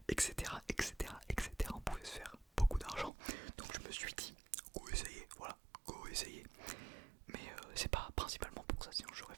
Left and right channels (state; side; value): drops out; left; at 3.1 s